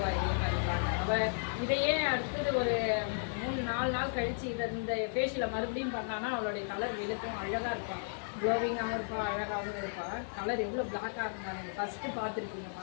இதே மாதிரி பாருங்க. அவள் இதையே அடுத்தது ஒரு 3-4 நாள் கழித்து இந்த ஃபேஷியலை மறுபடியும் பண்ணான்னா அவளுடைய கலர் வெளுக்கும், அழகாக இருப்பாள், க்ளோவிங்காகவும் இருப்பாள், அழகாகவும் இருப்பாள். கலர் எவ்வளோ பிளாக்காக இருந்தாங்க ஃபஸ்ட்டு பார்த்துருக்கீங்க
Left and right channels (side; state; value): right; silent; 55 dB below the other